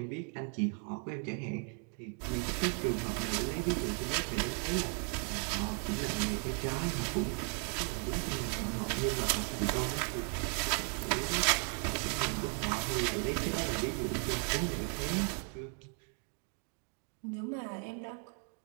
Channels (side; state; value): left; quieter; 39.4 dB